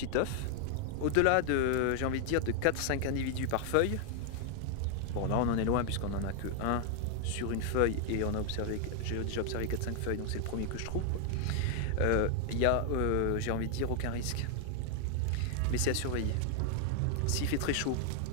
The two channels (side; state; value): both; different; correlation 0.00